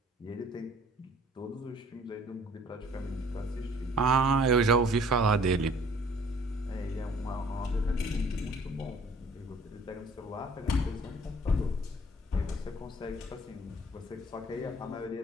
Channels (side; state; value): both; normal; correlation 0.54